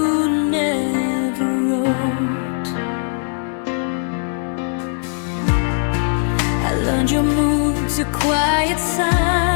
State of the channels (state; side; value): silent; right; 56 dB below the other